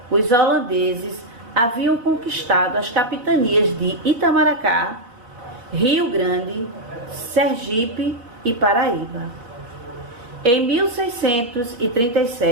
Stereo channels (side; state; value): left; late; 3.9 ms